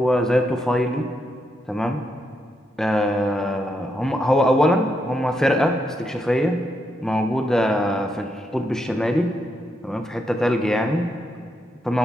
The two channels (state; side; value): normal; both; correlation 0.81